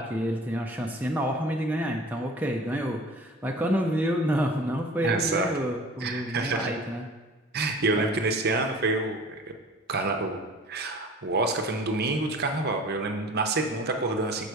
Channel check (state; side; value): normal; both; correlation 0.43